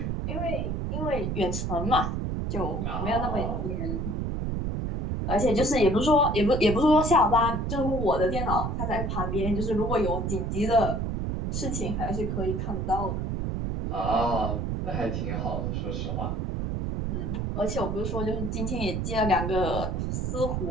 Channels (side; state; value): right; noise; rumble, 1 dB below the sound